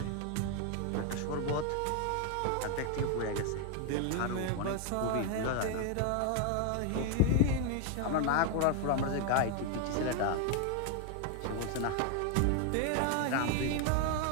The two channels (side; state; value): both; different; correlation 0.00